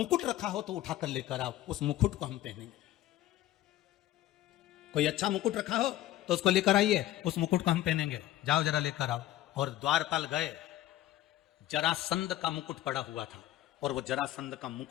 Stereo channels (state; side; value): quieter; right; 14.2 dB